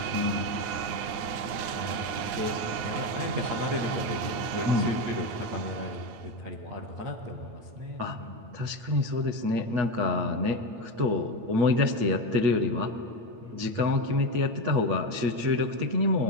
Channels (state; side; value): late; left; 8.9 ms